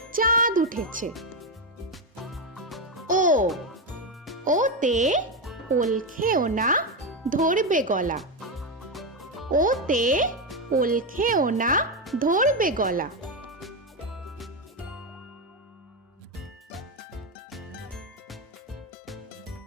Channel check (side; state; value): both; normal; correlation 0.10